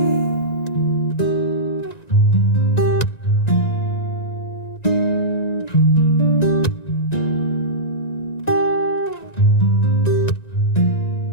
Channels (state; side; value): late; right; 1.9 ms